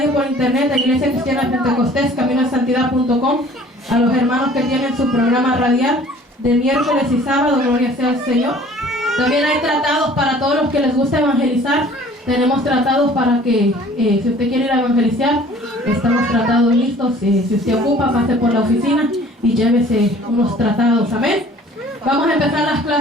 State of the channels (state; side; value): normal; both; correlation 0.51